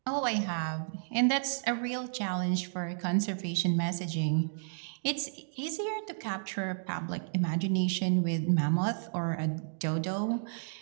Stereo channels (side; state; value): left; silent; digital silence